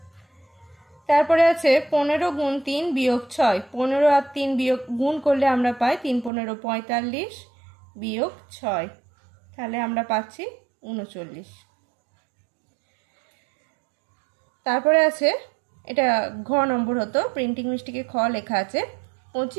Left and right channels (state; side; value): drops out; left; at 6.3 s